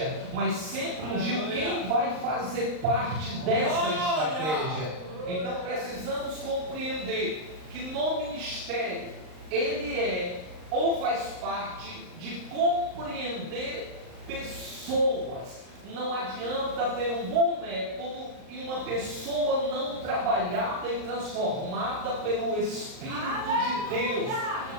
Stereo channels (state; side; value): late; left; 39 ms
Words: mas sempre ungiu quem vai fazer parte dessa estratégia. Então precisamos compreender que no ministério ele é ou faz parte de compreender pessoas. Não adianta ter um bom método e uma pessoa não trabalhada e transformada pelo Espírito de Deus.